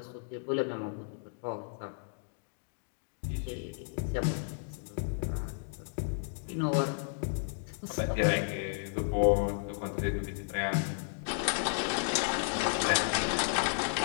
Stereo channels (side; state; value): right; silent; digital silence